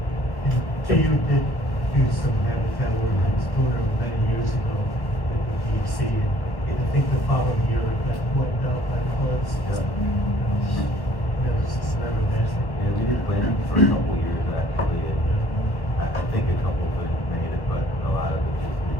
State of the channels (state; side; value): late; right; 1.2 ms